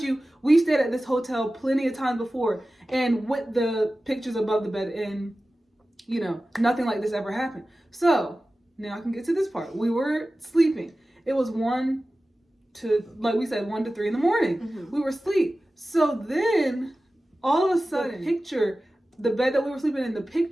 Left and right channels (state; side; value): normal; both; correlation 0.95